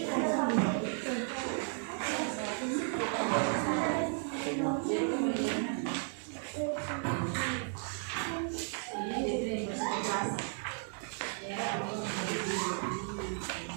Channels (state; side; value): silent; left; 55 dB below the other